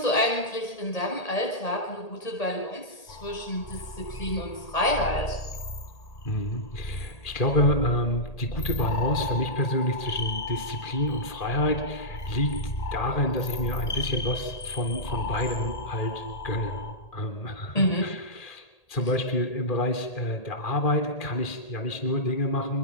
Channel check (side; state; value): right; late; 1.8 ms